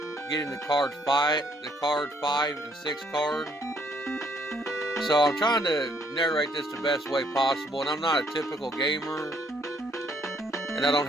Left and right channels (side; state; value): both; normal; correlation 0.67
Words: getting the card 5 and 6 card. So I'm trying to narrate this the best way possible, and I'm not a typical gamer, and I don't